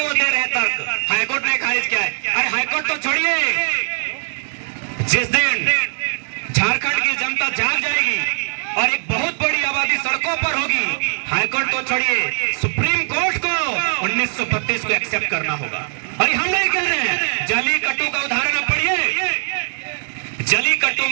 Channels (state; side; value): silent; left; digital silence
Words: वो दे रहे हैं तर्क। हाईकोर्ट ने खारिज किया है। अरे हाईकोर्ट तो छोड़िए, जिस दिन झारखंड की जनता जाग जाएगी और एक बहुत बड़ी आबादी सड़कों पर होगी, हाईकोर्ट तो छोड़िए, सुप्रीम कोर्ट को 1932 को एक्सेप्ट करना होगा। और हम नहीं कह रहे हैं, जलीकट्टू का उदाहरण आप पढ़िए। जलीकट्टू